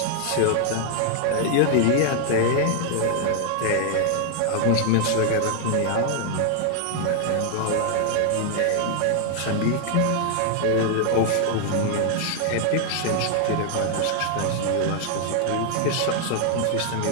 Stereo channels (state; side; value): different; both; correlation 0.00